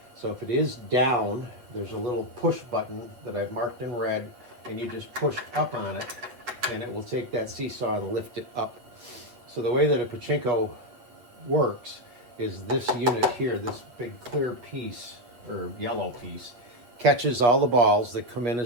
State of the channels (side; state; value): left; late; 8.3 ms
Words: So if it is down, there's a little push button that I've marked in red, and you just push up on it, and it will take that seesaw and lift it up. So the way that a pachinko works is this unit here, this big clear piece, or yellow piece, catches all the balls that come in